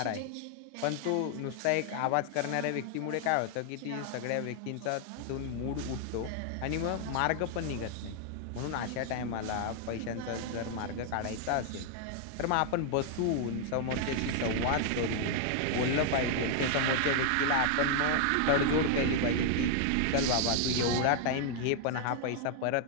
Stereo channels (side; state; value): both; different; correlation 0.00